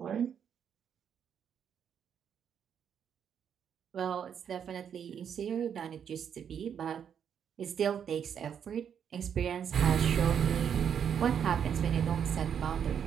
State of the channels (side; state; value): left; quieter; 8.1 dB